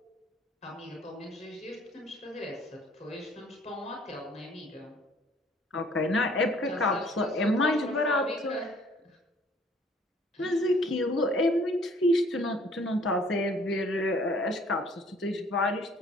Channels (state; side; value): normal; both; correlation 0.57